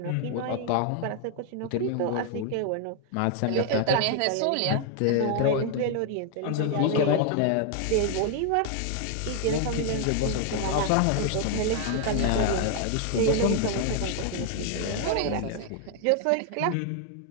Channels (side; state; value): both; different; correlation 0.00